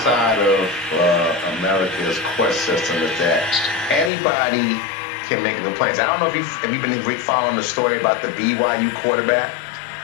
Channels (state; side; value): drops out; right; at 4.1 s